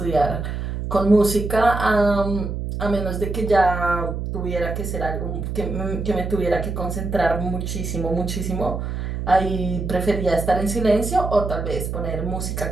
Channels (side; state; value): right; noise; hum, 4 dB below the sound